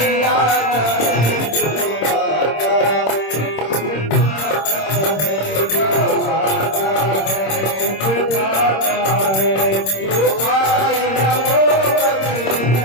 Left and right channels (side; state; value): right; late; 26 ms